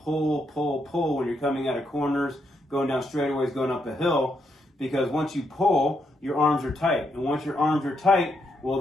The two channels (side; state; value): both; normal; correlation 0.79